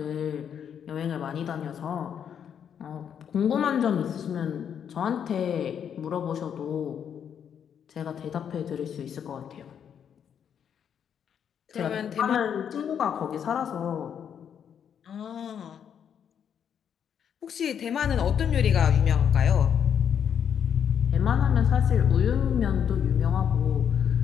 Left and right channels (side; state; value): right; quieter; 8.3 dB